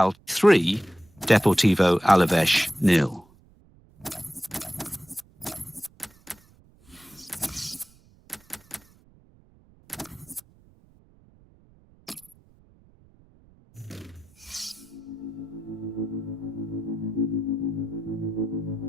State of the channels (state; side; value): noise; right; rumble, 29 dB below the sound